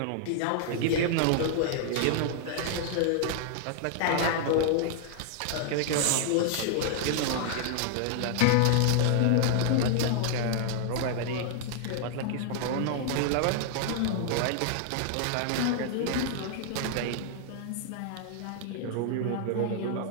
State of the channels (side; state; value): both; different; correlation -0.01